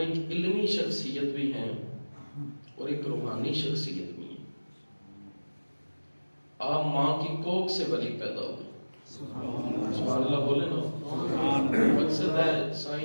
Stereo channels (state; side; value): inverted; both; correlation -1.00